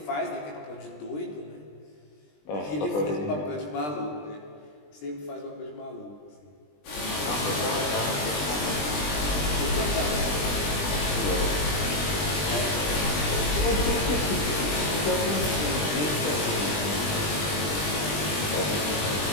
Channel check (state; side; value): late; right; 20 ms